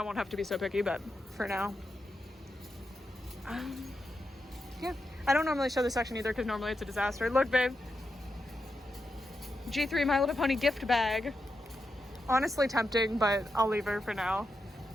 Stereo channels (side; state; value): both; normal; correlation 0.87